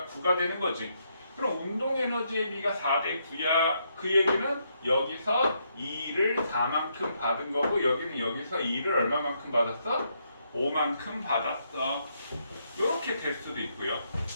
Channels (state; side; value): inverted; both; correlation -0.77